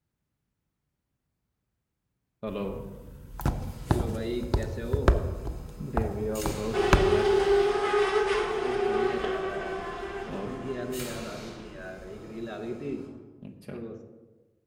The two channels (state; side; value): identical; both; correlation 1.00